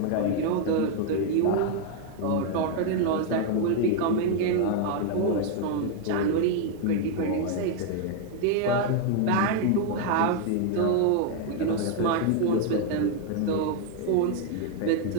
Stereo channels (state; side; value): different; both; correlation 0.00